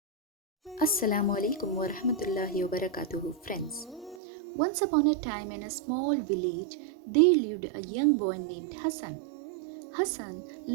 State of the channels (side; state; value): left; drops out; at 4.2 s